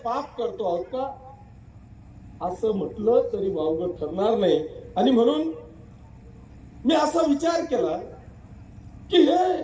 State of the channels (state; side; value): identical; both; correlation 1.00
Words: करतो आहोत का? असं म्हटलं तरी वावगं ठरणार नाही. आणि म्हणून मी असा विचार केला की हे